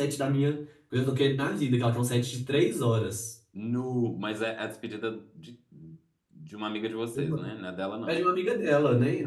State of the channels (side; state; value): both; identical; correlation 1.00